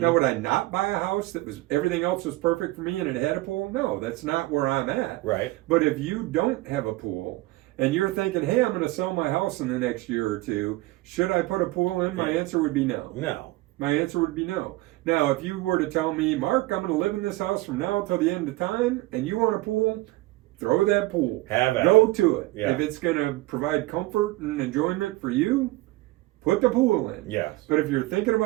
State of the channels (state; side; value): quieter; left; 18.9 dB